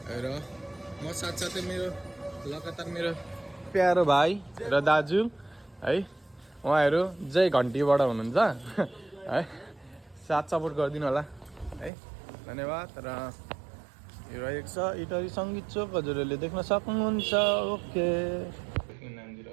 र म साथसाथै मेरो लगातार मेरो प्यारो भाइ र दाजु है, उहाँहरू जय घन्टीबाट हुनुहुन्छ है, साथ सपोर्ट गरिदिनु होला है, धन्यवाद। र यो रहेको छ इटरी सङ्गीत चोक, हजुरहरूले देख्न सक्नुहुन्छ। ओके, नाम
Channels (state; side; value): drops out; left; at 11.9 s